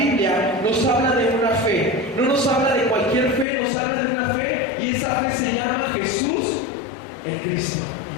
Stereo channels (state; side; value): drops out; right; at 3.5 s